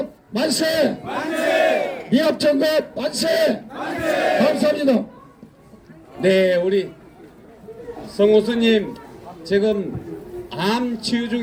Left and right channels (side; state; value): both; identical; correlation 1.00